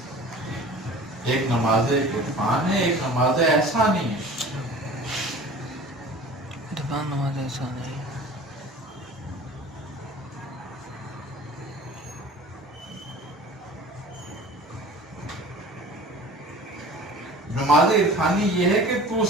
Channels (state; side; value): normal; both; correlation 0.42